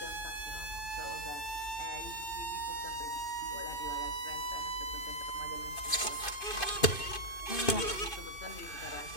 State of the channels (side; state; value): right; late; 2.5 ms